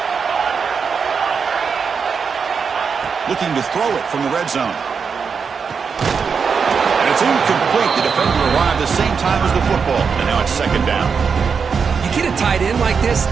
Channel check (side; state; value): left; quieter; 5.9 dB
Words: Looking to throw it from the red zone. And it's incomplete. The defender arrived the same time as the football. And now it's 2nd down. You get a tight end like this,